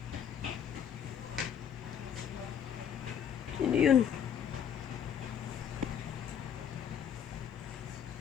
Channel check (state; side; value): quieter; right; 8.5 dB